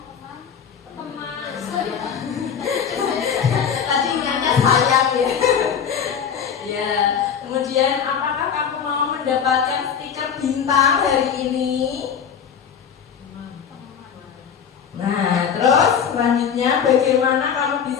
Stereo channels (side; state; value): right; quieter; 7.5 dB